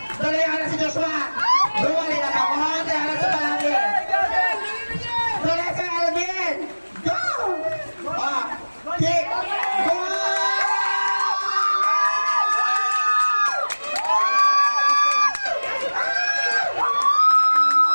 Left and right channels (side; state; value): both; inverted; correlation -1.00